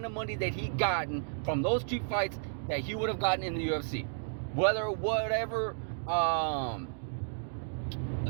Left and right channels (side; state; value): left; silent; digital silence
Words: of money that he gotten from those two fights that he would have gotten in the UFC. Whatever